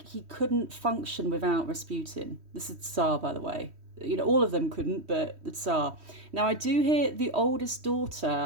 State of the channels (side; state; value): left; late; 3.1 ms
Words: couldn't function without Rasputin. This is Tsar, by the way. You know, all of them couldn't, but the Tsar. Now, I do hear the oldest